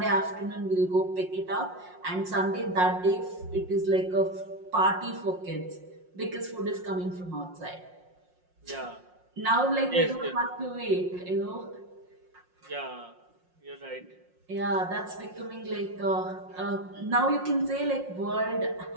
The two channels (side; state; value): left; late; 5.6 ms